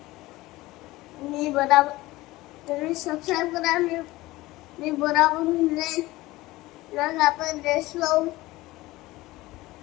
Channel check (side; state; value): right; quieter; 19.0 dB